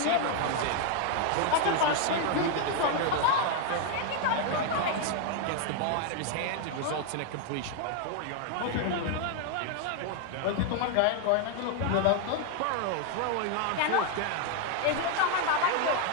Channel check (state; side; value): different; both; correlation 0.01